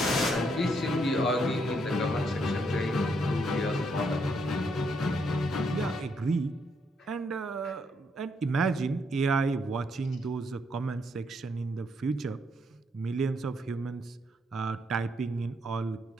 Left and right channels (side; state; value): both; normal; correlation 0.75